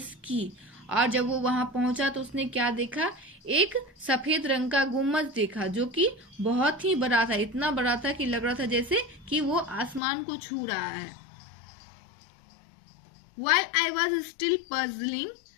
sky. और जब वो वहां पहुंचा तो उसने क्या देखा? एक सफेद रंग का गुम्बद देखा जो कि बहुत ही बड़ा था, इतना बड़ा था कि लग रहा था जैसे कि वो आसमान को छू रहा है। While I was still puzzling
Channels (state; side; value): drops out; right; at 10.0 s